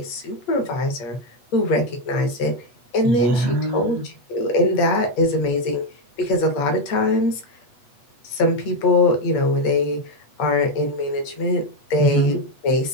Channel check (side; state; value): right; late; 8.2 ms